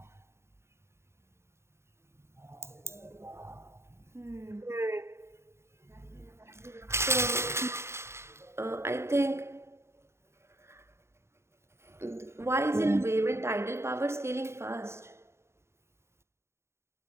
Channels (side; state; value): left; late; 0.13 ms